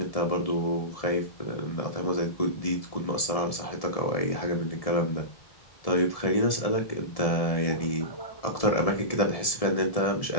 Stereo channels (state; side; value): late; right; 1.7 ms